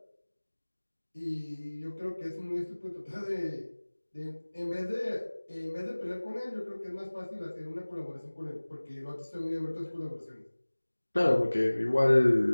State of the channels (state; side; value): inverted; both; correlation -1.00